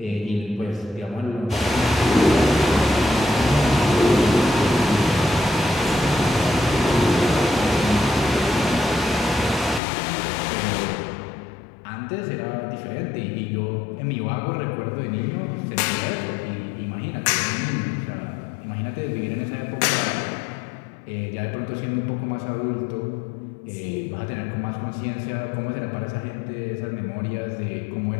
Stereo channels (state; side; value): drops out; right; at 9.8 s